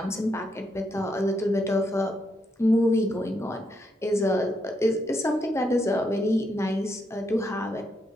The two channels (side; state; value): both; normal; correlation 0.79